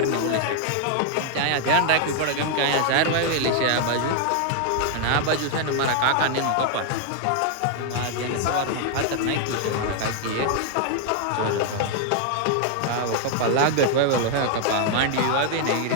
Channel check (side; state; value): both; different; correlation 0.00